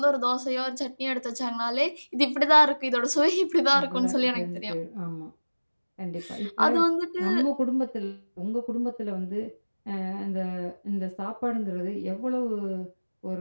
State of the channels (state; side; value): inverted; both; correlation -1.00